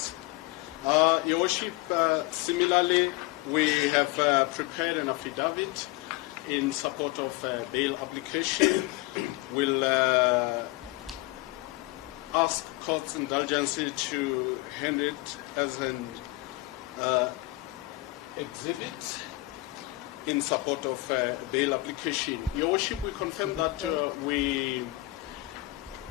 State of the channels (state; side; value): quieter; right; 20.5 dB